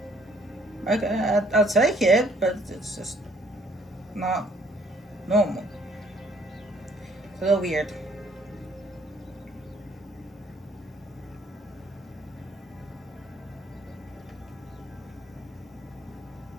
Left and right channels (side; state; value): both; normal; correlation 0.63